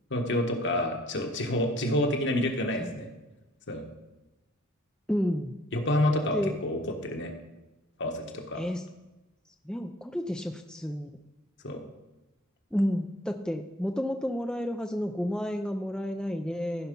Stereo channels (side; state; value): both; normal; correlation 0.59